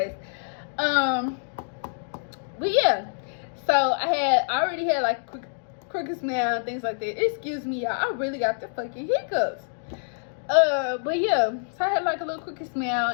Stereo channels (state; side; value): silent; right; digital silence